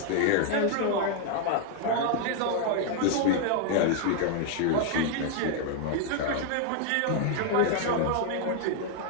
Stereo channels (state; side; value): different; both; correlation 0.00